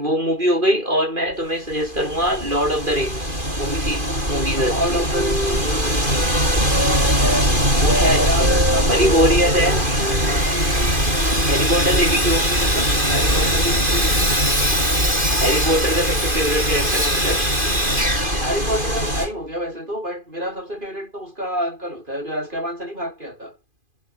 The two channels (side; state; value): left; late; 2.5 ms